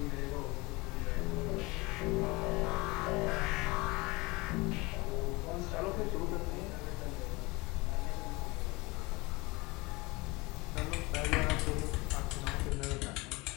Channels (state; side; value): quieter; right; 24.0 dB